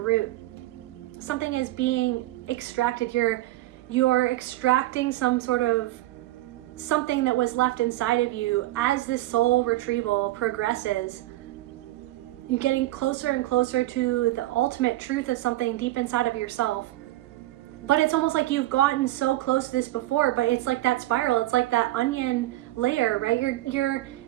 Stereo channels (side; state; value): left; quieter; 16.6 dB